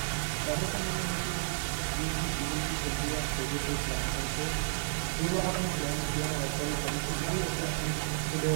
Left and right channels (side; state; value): left; silent; 57 dB below the other